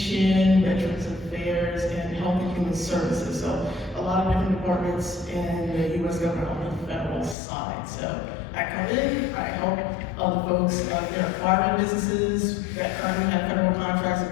Veterans Affairs, and Health and Human Services. So a lot of different departments in the U.S. government on the federal side. So I come in, I help other folks that are acquiring businesses that currently have federal contracts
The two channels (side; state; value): right; drops out; at 7.4 s